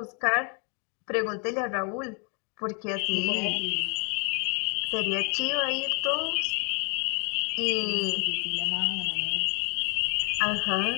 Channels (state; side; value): quieter; right; 35.9 dB